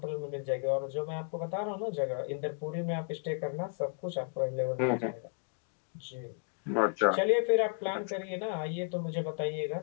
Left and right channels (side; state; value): right; silent; 55 dB below the other